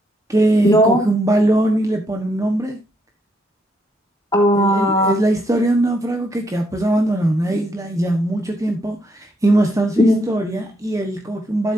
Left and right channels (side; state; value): both; normal; correlation 0.75